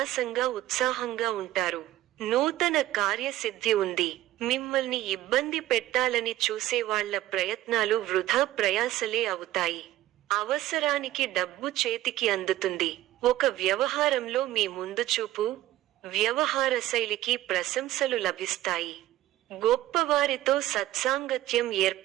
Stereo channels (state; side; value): quieter; left; 14.8 dB